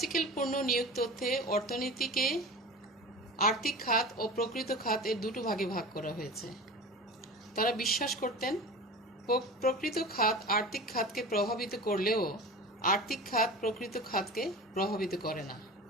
পূর্ণ নিয়োগ তথ্যে অর্থনীতিকে আর্থিক খাত ও প্রকৃত খাত এর দুটো ভাগে ভাগ করা হয়েছে। তারা বিশ্বাস করতেন প্রকৃত খাত আর্থিক খাতকে প্রভাবিত করলেও আর্থিক খাত প্রকৃত খাতকে প্রভাবিত করে না।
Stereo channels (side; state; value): both; normal; correlation 0.33